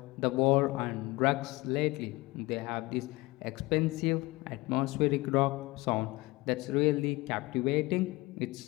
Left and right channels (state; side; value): quieter; right; 21.6 dB